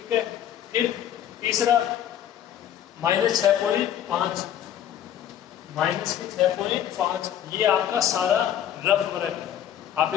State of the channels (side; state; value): right; quieter; 10.5 dB